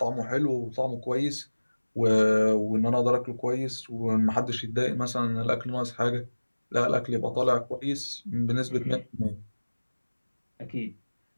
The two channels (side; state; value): both; inverted; correlation -1.00